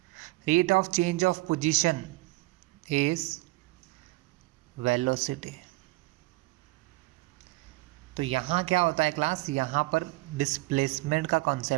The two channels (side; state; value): left; quieter; 21.5 dB